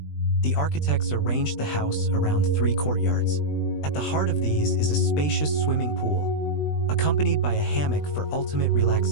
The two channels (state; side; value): late; right; 20 ms